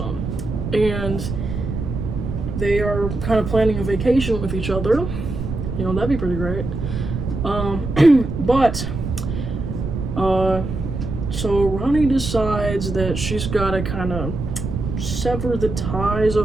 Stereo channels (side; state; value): right; noise; rumble, 5 dB below the sound